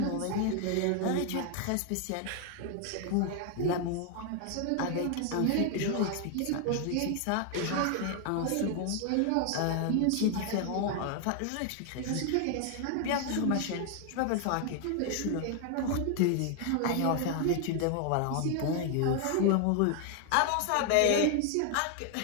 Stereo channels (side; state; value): both; different; correlation 0.00